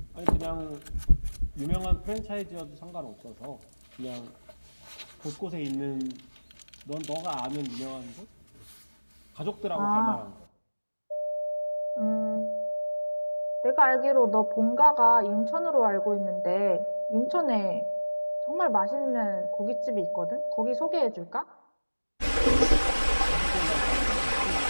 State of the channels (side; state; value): both; inverted; correlation -1.00